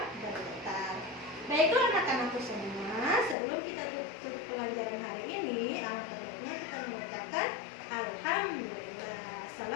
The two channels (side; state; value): right; drops out; at 3.4 s